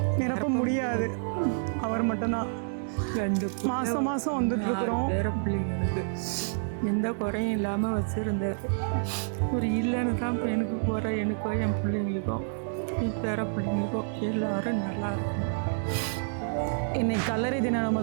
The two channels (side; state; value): left; silent; digital silence